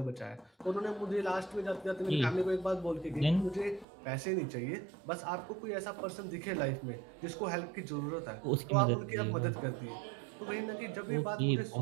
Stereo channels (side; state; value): left; drops out; at 3.9 s